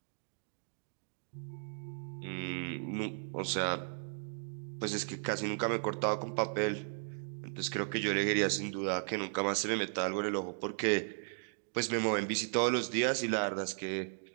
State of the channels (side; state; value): left; silent; digital silence